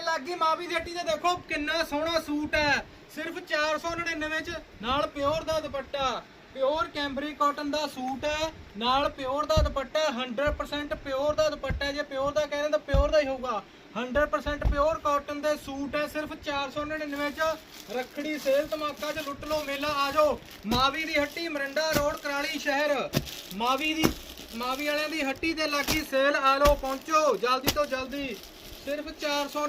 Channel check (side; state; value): both; identical; correlation 1.00